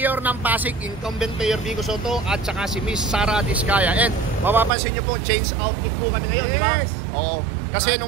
ng Pasig, incumbent Mayor Vico Soto, at saka si Miss Sara Diskaya. And mapapansin nyo po, change outfit po kami ngayon, yes. Di ba? Oo. Kasi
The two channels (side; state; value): left; drops out; at 4.7 s